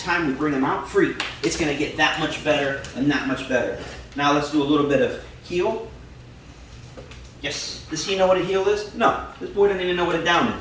we bring him out free, it's going to get that much better and that much better. Now let's do a little bit of heel. Yes. Does he know what a heel is? No. This boy doesn't even know what a down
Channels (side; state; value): both; identical; correlation 1.00